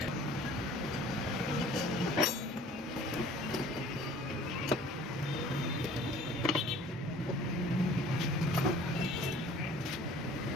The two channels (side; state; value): both; normal; correlation 0.50